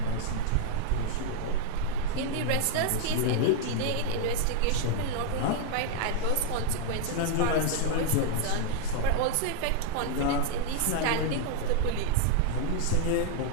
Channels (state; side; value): different; both; correlation 0.00